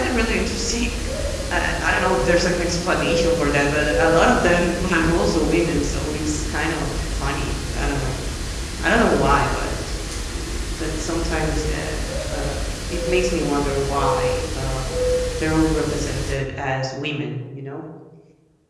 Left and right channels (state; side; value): identical; both; correlation 1.00